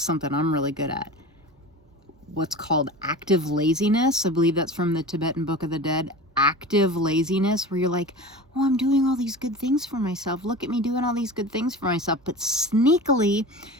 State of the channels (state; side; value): normal; both; correlation 0.33